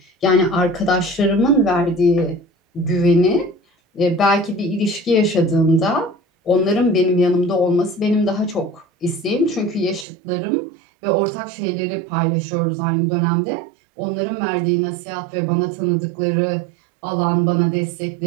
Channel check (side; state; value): left; drops out; at 10.1 s